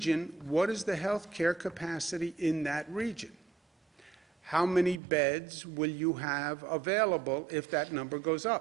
What is the healthcare capacity in that region? How many beds will you have available if that number goes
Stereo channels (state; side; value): drops out; left; at 5.0 s